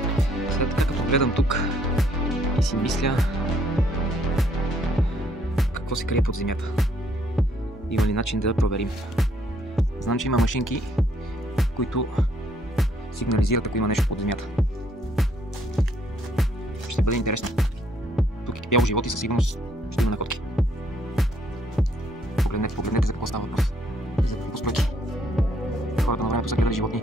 Сега така като гледам тук и си мисля какво се крие под земята. Има ли начин да проверим? Знам, че има машинки, които сигнализират, ако има нещо под земята. Ще бъде интересно. Тук е бяло живот и със сигурност ще има находки. Погледнете за какво става въпрос. За какво стойки. Хората на времето са гледали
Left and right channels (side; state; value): both; normal; correlation 0.68